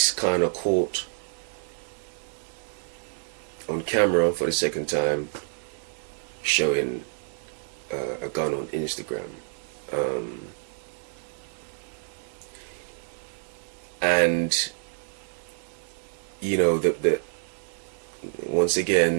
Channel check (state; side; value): silent; left; 59 dB below the other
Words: kind of caught on camera for the second time showing a gun on Instagram, and the once